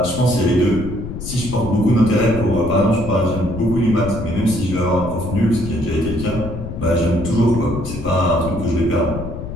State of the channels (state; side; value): noise; left; rumble, 8 dB below the sound